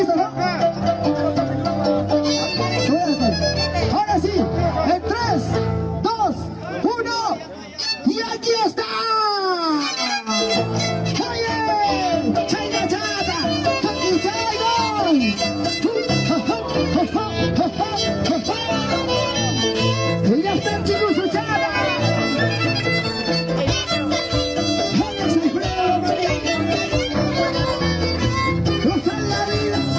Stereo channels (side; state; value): both; identical; correlation 1.00